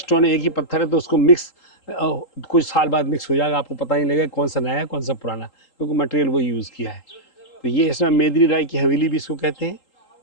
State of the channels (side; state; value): right; late; 3.8 ms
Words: एक ही पत्थर है, तो उसको मिक्स कुछ साल बाद मिक्स हो जाएगा, आपको पता नहीं लगेगा कौन सा नया है कौन सा पुराना, क्योंकि मटेरियल वही यूज़ किया है। तो ये इसमें मेदिनी राय की हवेली भी इसको कहते हैं,